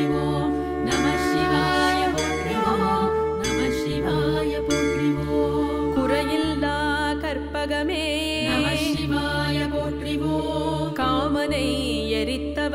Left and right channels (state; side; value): identical; both; correlation 1.00